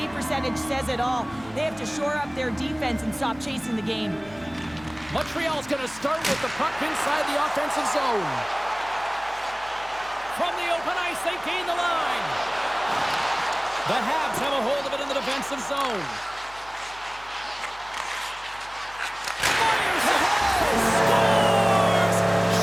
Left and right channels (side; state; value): left; noise; hum, 23 dB below the sound